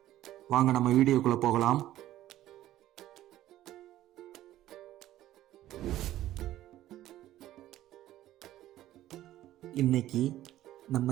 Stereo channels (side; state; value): left; quieter; 13.9 dB